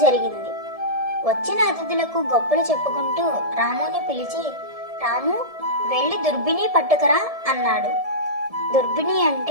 జరిగింది. వచ్చిన అతిథులకు గొప్పలు చెప్పుకుంటూ రాముని పిలిచి, రాము, వెళ్ళి దుర్బిని పట్టుకురా అన్నాడు. దుర్బిని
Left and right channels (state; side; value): late; left; 1.7 ms